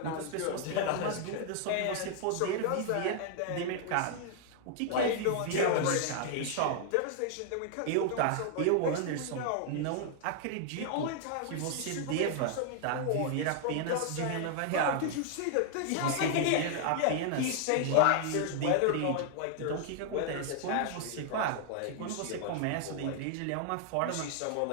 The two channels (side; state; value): both; different; correlation 0.00